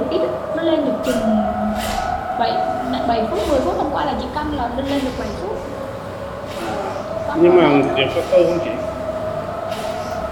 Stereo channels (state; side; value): identical; both; correlation 1.00